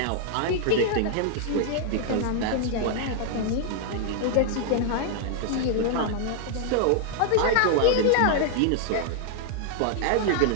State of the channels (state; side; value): different; both; correlation -0.01